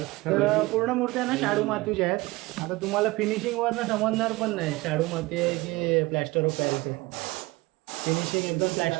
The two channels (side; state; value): left; quieter; 21.5 dB